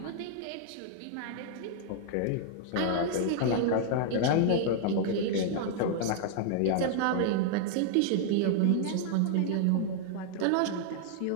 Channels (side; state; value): both; different; correlation -0.01